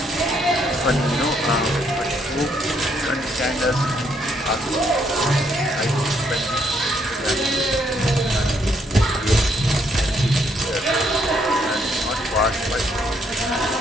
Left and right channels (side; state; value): both; normal; correlation 0.71